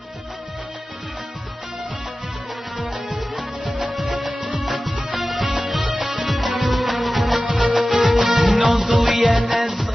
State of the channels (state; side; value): normal; both; correlation 0.95